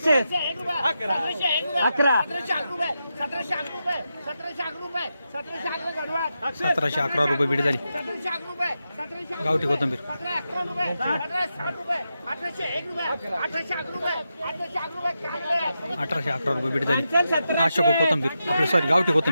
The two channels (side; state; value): both; inverted; correlation -0.88